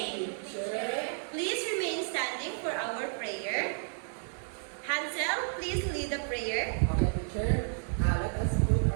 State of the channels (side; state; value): left; silent; 56 dB below the other